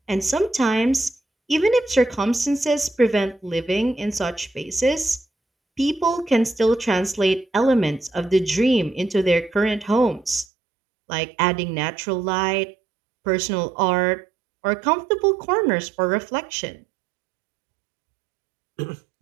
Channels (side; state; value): left; drops out; at 10.5 s